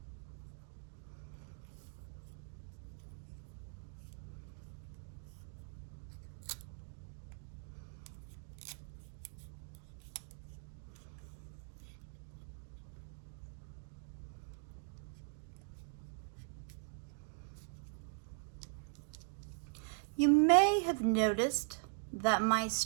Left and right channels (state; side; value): silent; left; digital silence